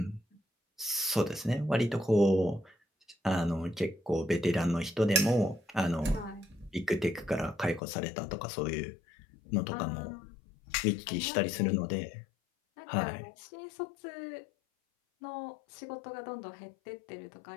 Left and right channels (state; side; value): drops out; right; at 7.8 s